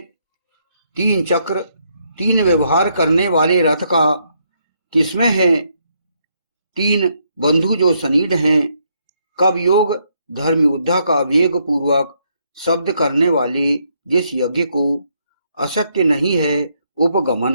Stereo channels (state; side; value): inverted; both; correlation -0.74